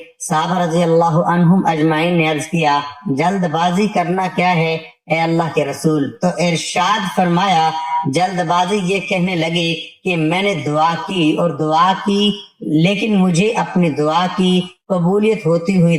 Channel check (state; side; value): identical; both; correlation 1.00